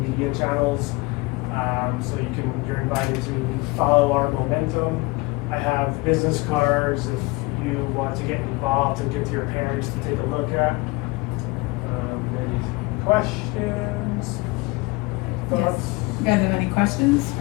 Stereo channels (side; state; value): right; quieter; 23.8 dB